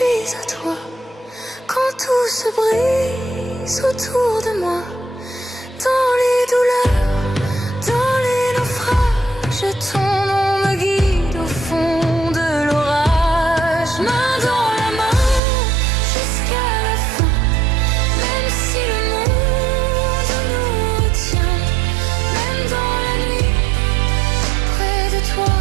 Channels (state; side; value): drops out; left; at 15.4 s